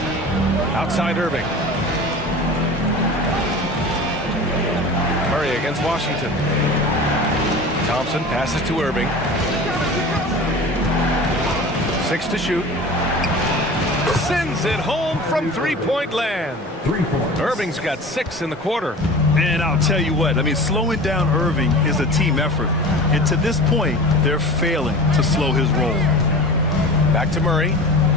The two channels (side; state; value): both; normal; correlation 0.36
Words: Outside Irving. Murray against Washington. Thompson passes to Irving. 6 to shoot. Sends it home from three-point land. 3 points. Irving's got 6 in the quarter. And I'll tell you what, I mean, slowing down Irving is a team effort. And to this point, they're failing to slow his roll. Back to Murray.